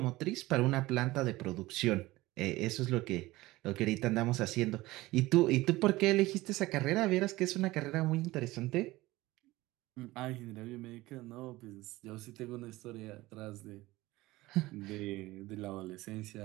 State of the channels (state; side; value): quieter; left; 18.9 dB